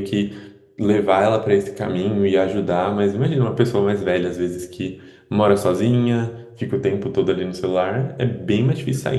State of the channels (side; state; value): both; identical; correlation 1.00